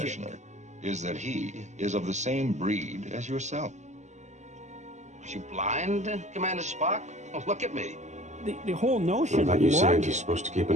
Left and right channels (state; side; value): late; left; 0.34 ms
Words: is that he is of the same breed as yourself. Are you blind, Commander Spock? Oh, look at me. The whole notion of you logic. scientists supposed to keep